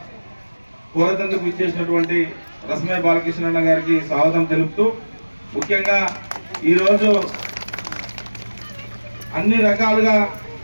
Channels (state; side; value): inverted; both; correlation -1.00